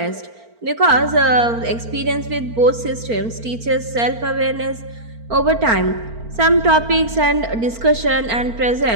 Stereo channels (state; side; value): late; left; 4.4 ms